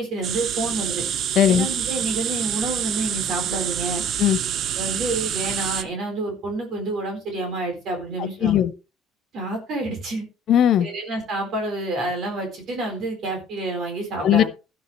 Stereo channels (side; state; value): both; normal; correlation 0.49